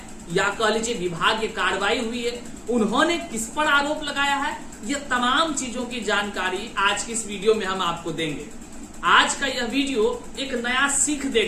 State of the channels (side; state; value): both; identical; correlation 1.00